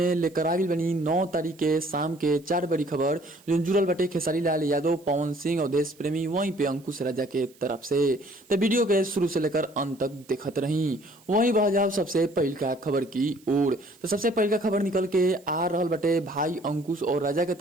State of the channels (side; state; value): right; noise; hiss, 28 dB below the sound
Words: लेकर आगिल बनी 9 तारीख के शाम के 4 बड़ी खबर जो जुड़ल बटे खेसारी लाल यादव, पवन सिंह और देश प्रेमी वहीं पे अंकुश राजा के तरफ से। तो वीडियो के शुरू से लेकर अंत तक देखत रही। वहीं बह जाओ सबसे पहल का खबर की ओर। तो सबसे पहल का खबर निकल के आ रहल बटे भाई अंकुश और राजा के